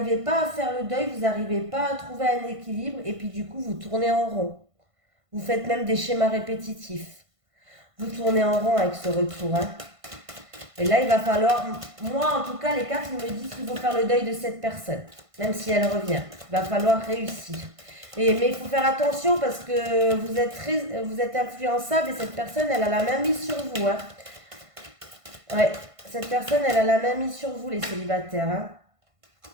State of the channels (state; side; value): late; left; 1.5 ms